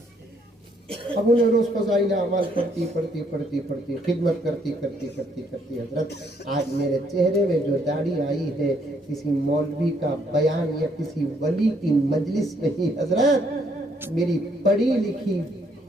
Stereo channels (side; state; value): both; normal; correlation 0.69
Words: अब उन्हें रोज फजाइल अमाल पढ़ती पढ़ती पढ़ती पढ़ती खिदमत करती करती करती करती हजरत आज मेरे चेहरे में जो दाढ़ी आई है किसी मौलवी का बयान या किसी वली की मजलिस नहीं हजरत, मेरी पढ़ी लिखी